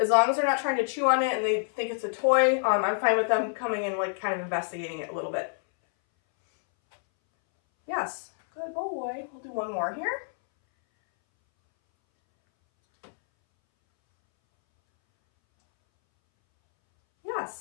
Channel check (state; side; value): silent; right; 60 dB below the other